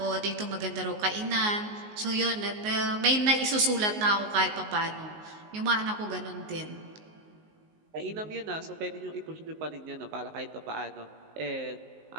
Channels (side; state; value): left; late; 19 ms